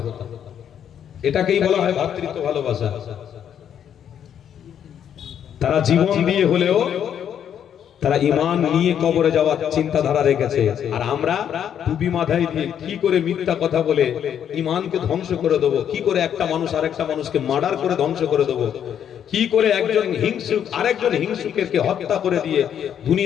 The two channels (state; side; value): quieter; right; 9.1 dB